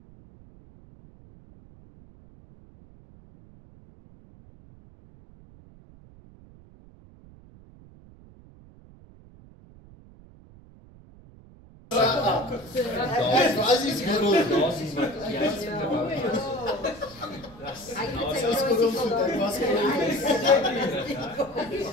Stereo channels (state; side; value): noise; right; rumble, 22 dB below the sound